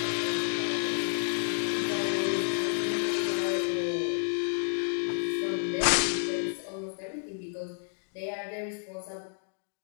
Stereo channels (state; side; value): silent; right; digital silence